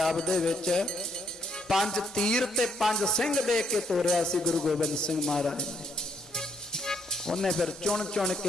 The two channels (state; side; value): normal; both; correlation 0.72